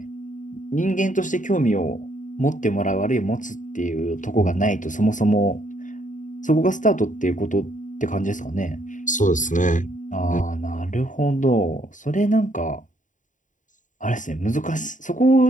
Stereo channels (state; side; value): late; right; 0.37 ms